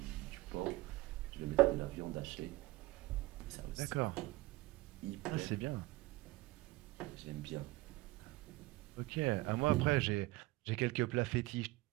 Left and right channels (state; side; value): quieter; left; 19.6 dB